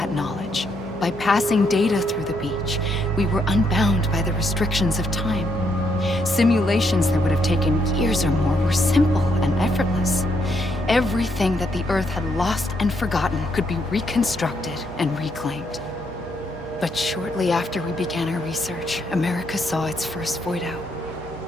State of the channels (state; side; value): noise; right; hum, 16 dB below the sound